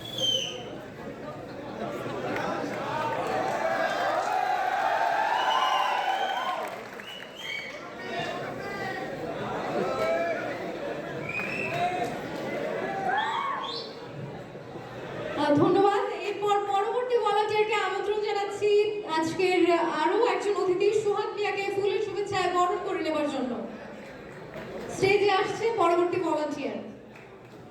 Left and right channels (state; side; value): identical; both; correlation 1.00